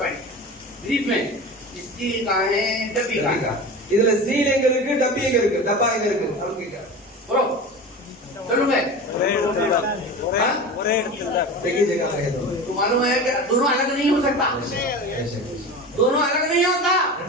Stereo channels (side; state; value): both; normal; correlation 0.31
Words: पॉइंट ब्रीफ में स्टील कहाँ है, डब्बी कहाँ है। இதுல ஸ்டீல் எங்க இருக்கு, டப்பி எங்க இருக்கு, டப்பா எங்க இருக்கு, அவங்க बोलो चलो मैं देखिए जगह है तो तो मालूम है कि दोनों अलग नहीं हो सकता, दोनों अलग नहीं होता,